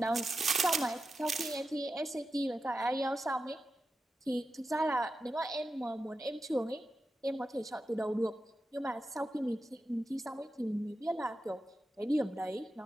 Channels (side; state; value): both; normal; correlation 0.90